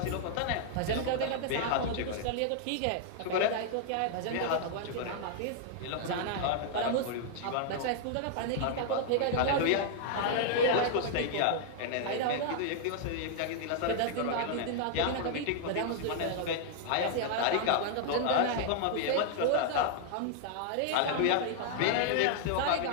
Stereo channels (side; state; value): both; different; correlation -0.01